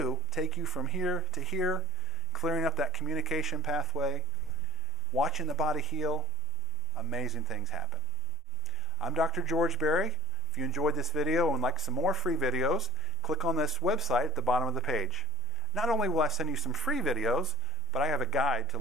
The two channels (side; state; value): right; quieter; 5.4 dB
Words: take you from here to here, clearing up that communication pathway, watching the body heal, amazing things happen. I'm Dr. George Berry. If you enjoyed this video and would like some more free videos, click on this website at the bottom of the page. Not only will I send you some free videos, but I have a guide to